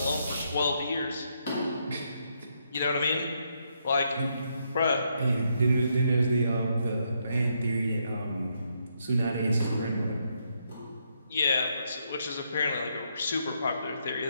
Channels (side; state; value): both; inverted; correlation -0.77